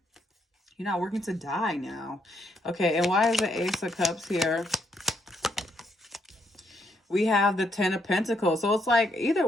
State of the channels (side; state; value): both; normal; correlation 0.75